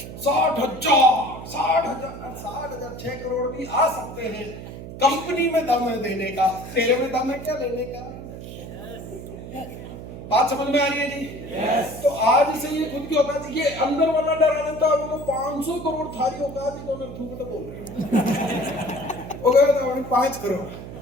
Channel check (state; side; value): noise; right; hum, 11 dB below the sound